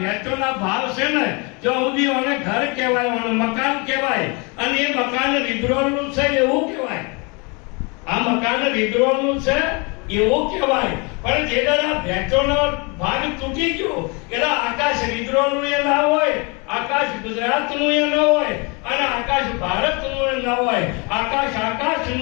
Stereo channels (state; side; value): quieter; right; 30.5 dB